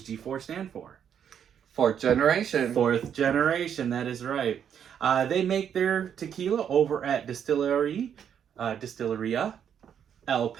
G4 stand for? Fourth generation. Fourth generation, that is right. They make their tequila over at Distilleria El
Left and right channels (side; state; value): left; quieter; 8.5 dB